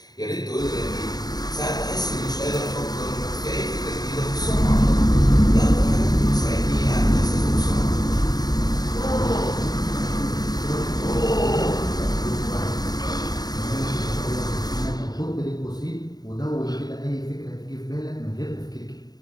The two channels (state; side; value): late; right; 0.19 ms